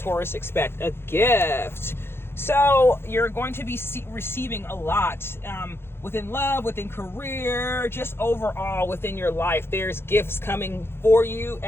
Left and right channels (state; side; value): late; right; 0.11 ms